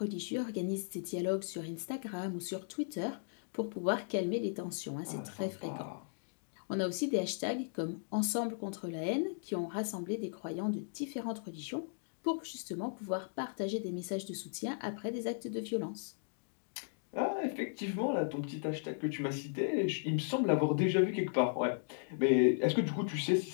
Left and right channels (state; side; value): silent; right; digital silence